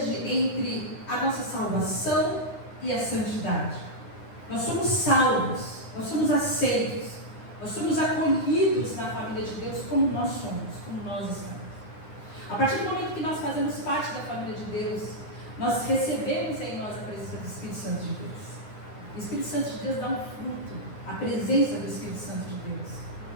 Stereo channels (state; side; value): late; right; 9.8 ms